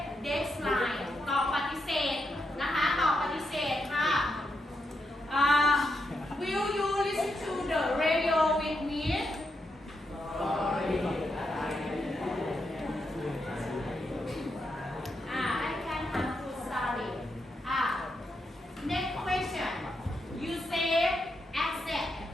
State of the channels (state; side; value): normal; both; correlation 0.83